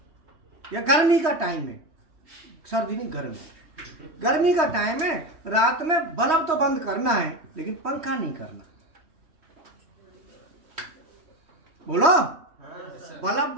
या गर्मी का टाइम है, सर्दी नहीं गर्मी का टाइम है, रात में बल्ब तो बंद करना है लेकिन पंखा नहीं करना। बोलो, बल्ब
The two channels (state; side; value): late; left; 3.1 ms